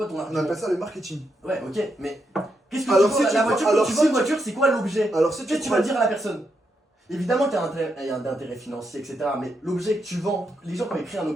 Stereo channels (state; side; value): normal; both; correlation 0.82